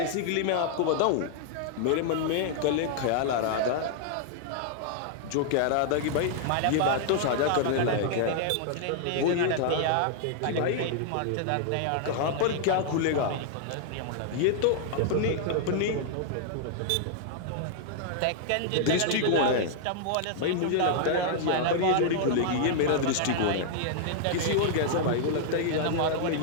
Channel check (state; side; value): different; both; correlation -0.01